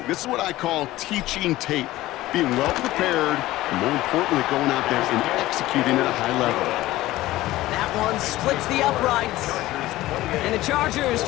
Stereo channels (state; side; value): quieter; right; 16.7 dB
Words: This is what I call teaching tape. Being well prepared, and more importantly, going out there and executing at a high level. That one splits the uprights. And the Chargers